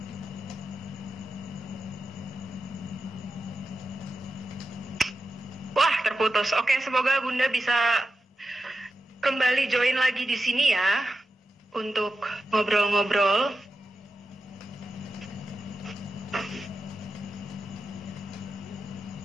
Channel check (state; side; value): normal; both; correlation 0.90